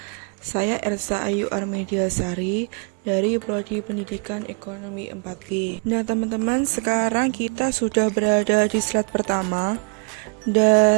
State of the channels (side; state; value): left; quieter; 35.8 dB